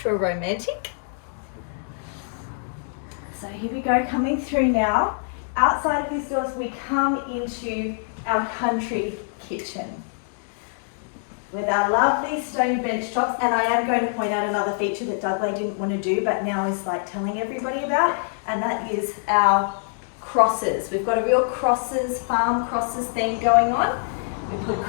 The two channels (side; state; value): right; silent; digital silence